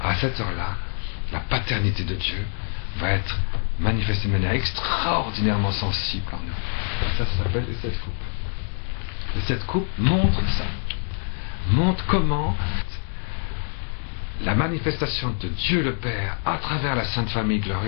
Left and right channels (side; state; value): right; silent; 56 dB below the other